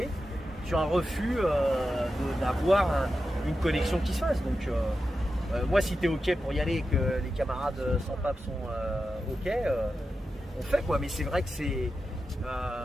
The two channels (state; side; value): normal; both; correlation 0.90